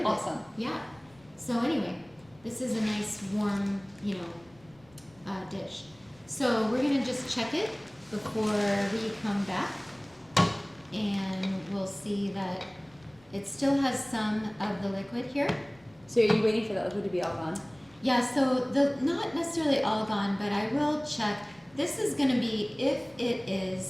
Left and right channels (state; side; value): noise; left; rumble, 28 dB below the sound